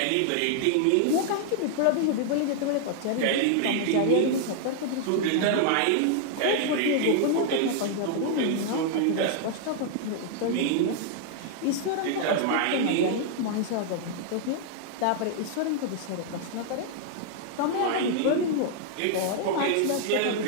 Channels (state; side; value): different; both; correlation -0.01